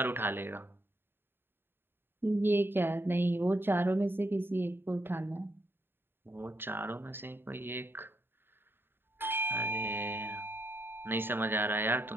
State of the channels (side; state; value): left; late; 0.10 ms